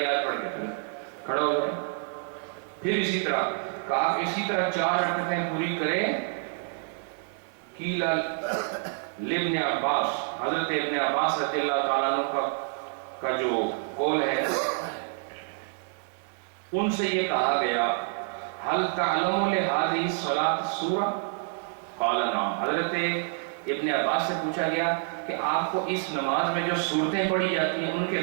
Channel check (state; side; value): silent; left; 57 dB below the other